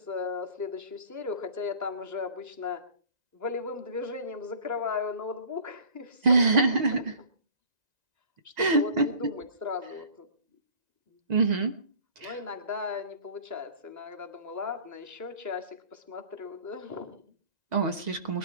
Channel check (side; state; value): left; late; 1.9 ms